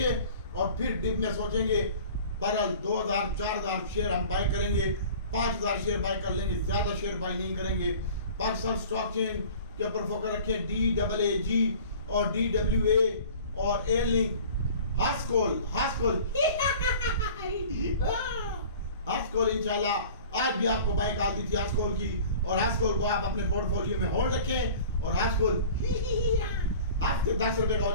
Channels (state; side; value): inverted; both; correlation -0.44